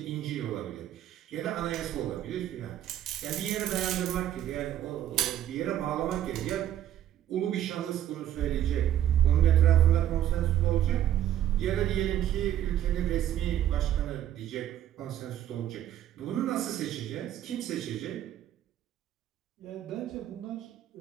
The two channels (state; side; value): quieter; left; 11.5 dB